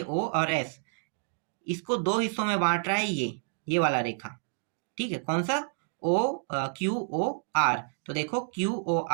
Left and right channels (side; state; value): left; silent; 58 dB below the other